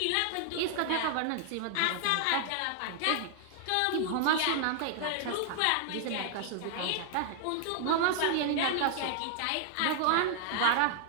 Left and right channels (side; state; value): both; different; correlation 0.00